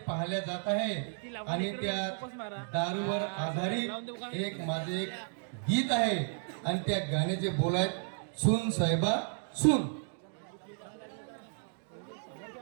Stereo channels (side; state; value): left; silent; digital silence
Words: पाहिल्या जात आहे. आणि त्या दारूवर आधारित माझे एक गीत आहे आणि त्या गाण्याचे बोल आहेत सून साहेबा सून.